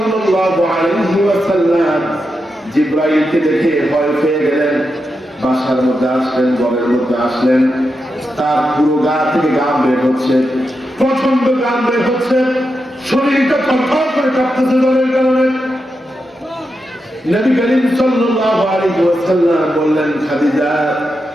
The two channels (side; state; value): both; normal; correlation 0.87